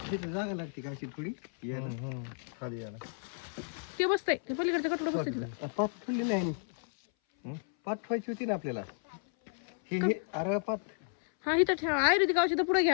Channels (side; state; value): right; silent; 56 dB below the other